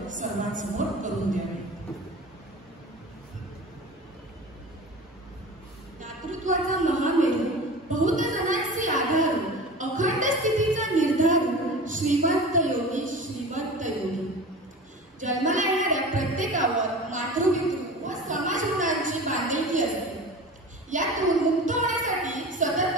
सर्वांसमोर करून द्यावी. दातृत्वाचा महामेरू, बहुत जणांची आधार, अखंड स्थितीचा निर्धार, श्रीमंत योगी श्रीमंत योगी. जन्माला येणाऱ्या प्रत्येकावर मातृपितृ व समाज ऋणांची बांधिलकी असते. यातून मुक्त होण्यासाठी सतत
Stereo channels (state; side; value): normal; both; correlation 0.35